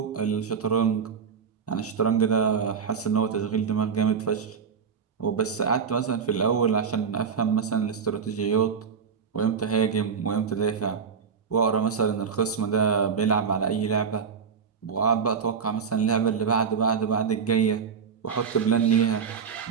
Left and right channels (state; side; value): quieter; left; 6.3 dB